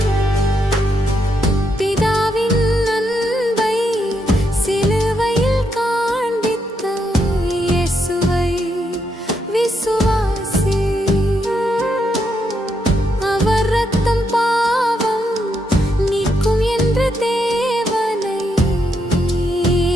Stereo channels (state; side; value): normal; both; correlation 0.79